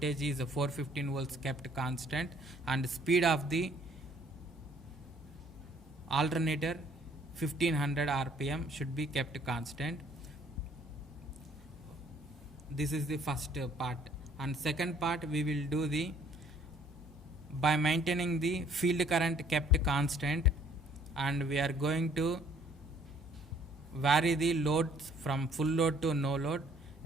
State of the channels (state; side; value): normal; both; correlation 0.61